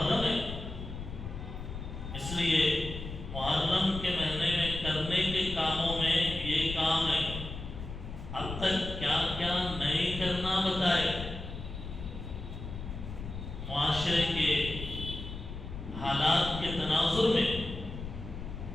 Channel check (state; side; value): noise; left; rumble, 9 dB below the sound